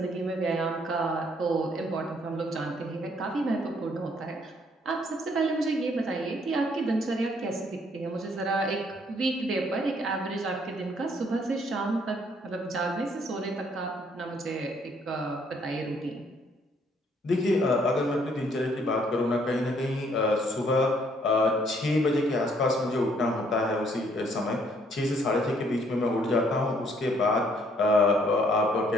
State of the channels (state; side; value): normal; both; correlation 0.65